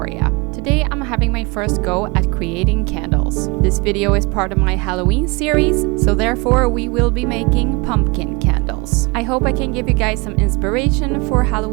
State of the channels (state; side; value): quieter; left; 26.8 dB